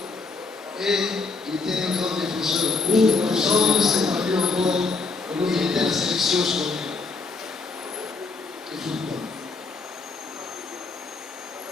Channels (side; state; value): right; quieter; 4.0 dB